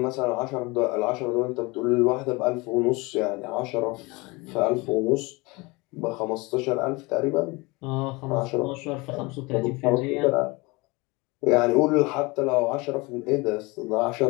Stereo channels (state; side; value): quieter; right; 25.0 dB